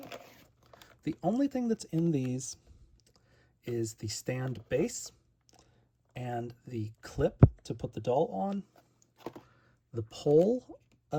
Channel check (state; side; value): identical; both; correlation 1.00